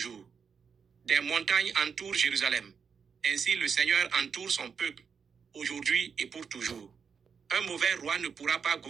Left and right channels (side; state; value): left; quieter; 6.3 dB